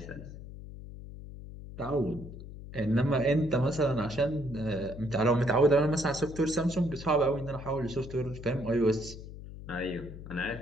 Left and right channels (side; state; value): left; noise; hum, 13 dB below the sound